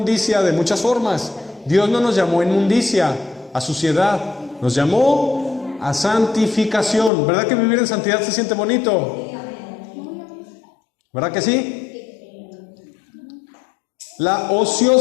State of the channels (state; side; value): drops out; right; at 7.1 s